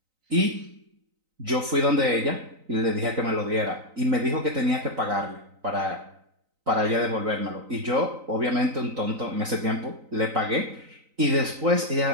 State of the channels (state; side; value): late; left; 3.9 ms